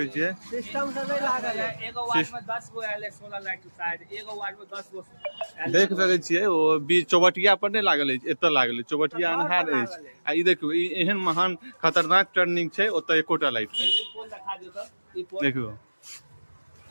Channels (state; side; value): inverted; both; correlation -1.00